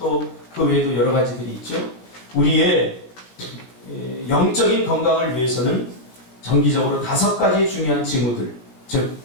그 외에도 여러 가지들이 있죠. 우리의 영적인 건강을 위해서는 정기적으로 5가지 중요한 징후들, 즉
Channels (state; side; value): late; right; 17 ms